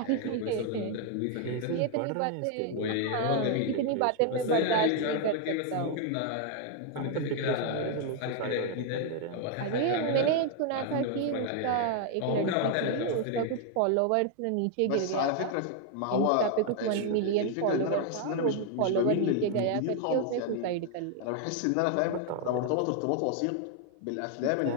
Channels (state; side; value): different; both; correlation 0.00